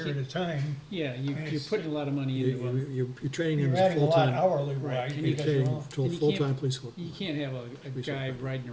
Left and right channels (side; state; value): both; identical; correlation 1.00